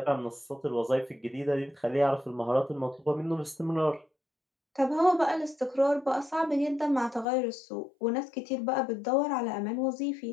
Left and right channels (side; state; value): right; drops out; at 7.2 s